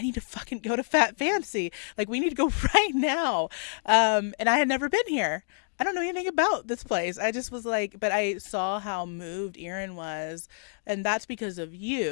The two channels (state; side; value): silent; right; digital silence